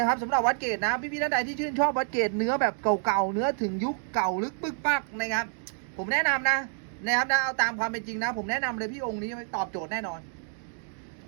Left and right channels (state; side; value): silent; left; 59 dB below the other